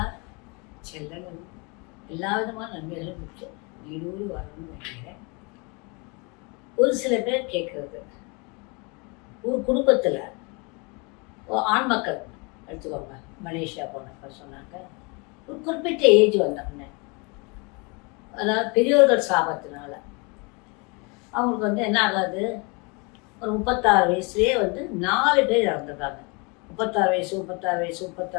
செல்லங்களும் எல்லா விதமான நன்மைகளும் பெற்று நீடூடி வரணும்னு நினைக்கிறேன். ஒரு சில பேர் கேட்குறது, ஒரு குடும்பத்தில் ஆண் மக்கள் எடுத்துக்கோங்க, மலேசியா போனப்ப சொன்னாங்க, ஒரு குறிப்பிட்ட ஏஜ் வந்தோடனே, அதாவது பெரியோர்கள் சாபத்தினால அவங்களுக்கு என்ன ஆகாது, ஒரு 36 வயசுலேயே 4 பேர் இறந்துருக்காங்க. 36 வயசு 36 வயசு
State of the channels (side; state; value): right; quieter; 30.4 dB